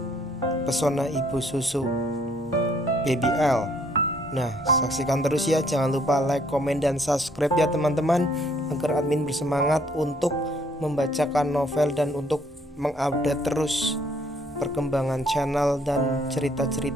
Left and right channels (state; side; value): normal; both; correlation 0.64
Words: Pesona Ibu Susu Baby L. Nah, saksikan terus ya. Jangan lupa like, komen, dan subscribe ya teman-teman, agar admin bersemangat untuk membacakan novel dan untuk mengupdate terus perkembangan channel dan